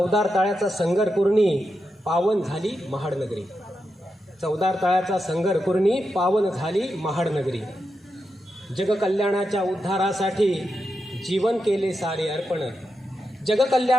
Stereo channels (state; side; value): normal; both; correlation 0.87